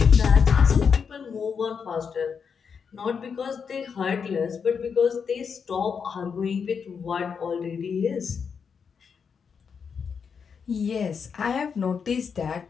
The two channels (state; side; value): quieter; right; 6.3 dB